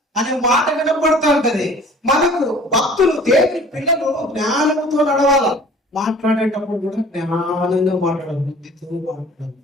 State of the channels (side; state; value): both; normal; correlation 0.48